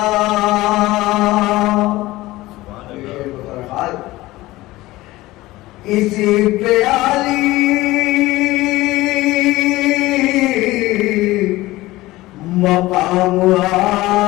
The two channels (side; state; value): right; quieter; 18.3 dB